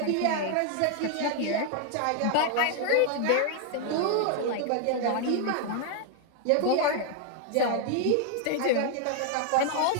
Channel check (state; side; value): different; both; correlation 0.00